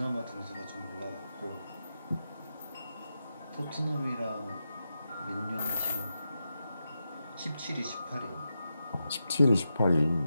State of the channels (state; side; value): inverted; both; correlation -0.88